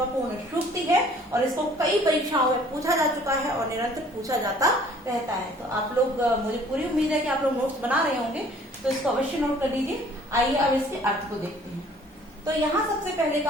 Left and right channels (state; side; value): normal; both; correlation 0.55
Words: सूक्ति है, और इसको कई परीक्षाओं में पूछा जा चुका है और निरंतर पूछा जाता रहता है। तो आप लोग, मुझे पूरी उम्मीद है कि आप लोग नोट्स बना रहे होंगे, तो इसको अवश्य नोट कर लीजिए। आइए अब इसके अर्थ को देखते हैं। तो यहाँ सबसे पहले